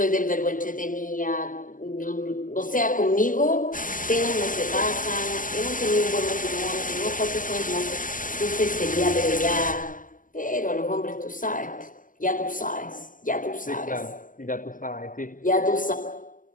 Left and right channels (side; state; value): right; late; 0.38 ms